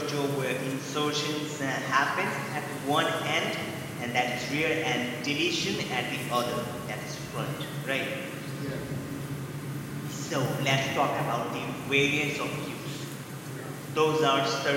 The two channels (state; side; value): identical; both; correlation 1.00